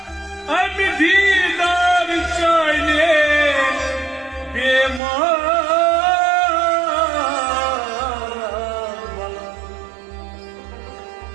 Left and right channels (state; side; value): drops out; left; at 5.0 s